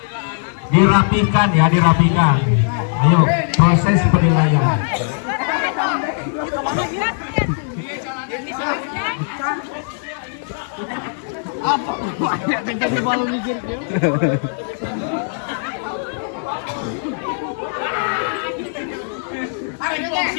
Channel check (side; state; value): right; silent; digital silence